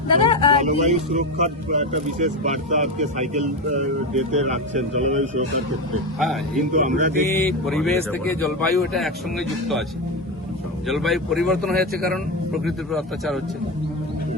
জলবায়ু সুরক্ষার একটা বিশেষ বার্তা আজকে সাইকেল ডেতে রাখছেন জলবায়ু সুরক্ষার ক্ষেত্রে। হ্যাঁ, কিন্তু আমরা পরিবেশ থেকে জলবায়ু এটা একসঙ্গে যুক্ত আছে। জলবায়ু পরিবর্তন হয়েছে কারণ প্রকৃতির উপর অত্যাচার হচ্ছে,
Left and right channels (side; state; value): both; normal; correlation 0.16